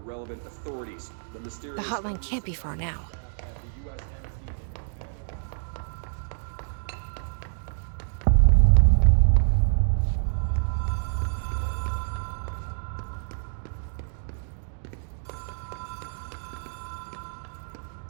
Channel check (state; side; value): silent; left; digital silence